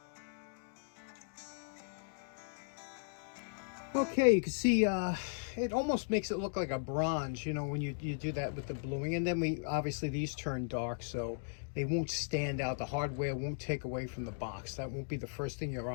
Okay, you can see it almost makes it look like a bronze, you know, when you do that with the bluing. And then obviously these turn dark, so they won't stand out. The hardware won't take away from the box. That won't be the first thing your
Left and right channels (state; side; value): silent; right; digital silence